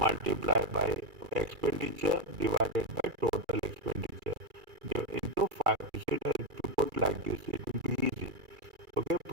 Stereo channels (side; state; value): left; late; 2.3 ms